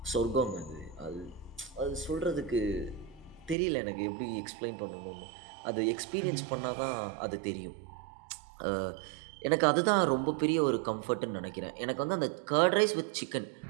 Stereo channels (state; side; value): drops out; left; at 3.6 s